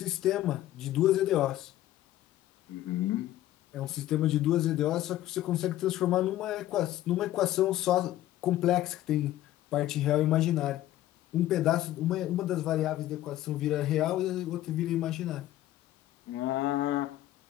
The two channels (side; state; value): right; quieter; 14.1 dB